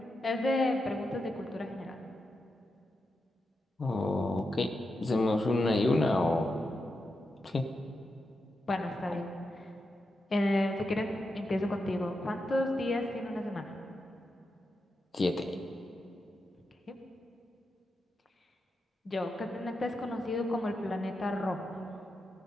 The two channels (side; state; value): both; normal; correlation 0.87